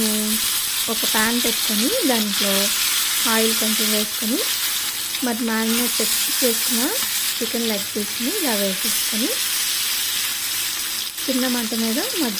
ఒక ప్యాన్ పెట్టుకొని దాంట్లో ఆయిల్ కొంచెం వేసుకొని మరి మ్యారినేట్ చేసుకున్న చికెన్ లెగ్ పీస్ని ఇలా వేసేసుకొని చిన్న మంట మీద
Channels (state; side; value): identical; both; correlation 1.00